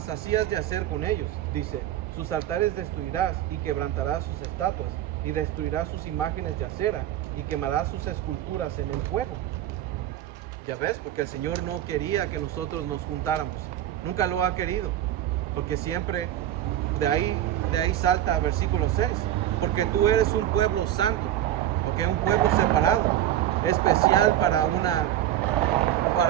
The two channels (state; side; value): quieter; left; 12.2 dB